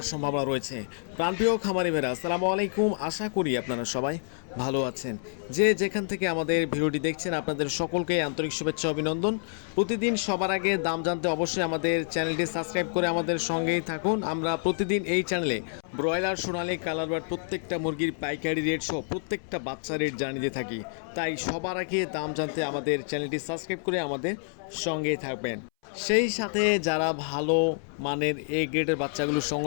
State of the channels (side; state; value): right; silent; 59 dB below the other